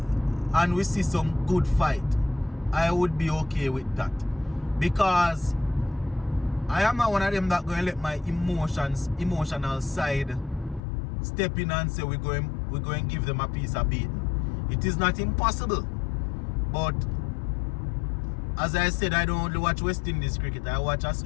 and we see some good fight, I would be okay with that, because I am not one of them that going to let my emotional side step in and say we're going to give them a piece of beating. It is not impossible, but as I said, I don't only watch West Indies cricket, I watch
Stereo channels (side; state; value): right; drops out; at 10.8 s